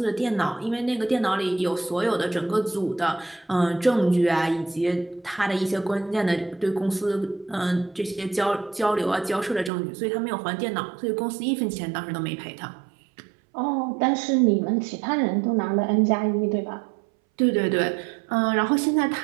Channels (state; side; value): drops out; left; at 9.7 s